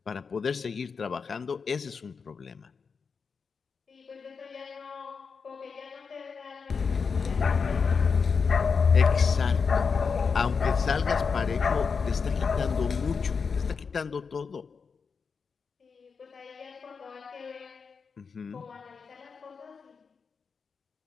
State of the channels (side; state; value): right; quieter; 5.5 dB